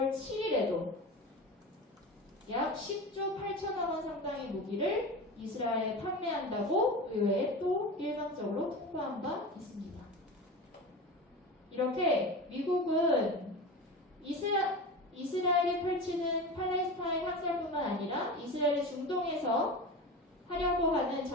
7일에도 약 10조 8천억 원 상당의 무기를 이스라엘에 판매한다고 의회에 또 일방적으로 통보한 바 있습니다. 이렇게 미국은 이스라엘이 펼치는 팔레스타인 학살뿐만 아니라 이스라엘이 중동에서 하려고 하는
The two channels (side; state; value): both; normal; correlation 0.28